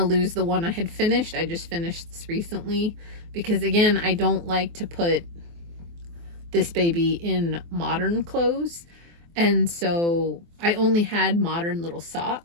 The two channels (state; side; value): late; left; 24 ms